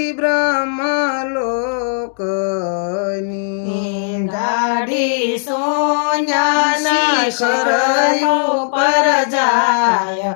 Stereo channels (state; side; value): silent; right; digital silence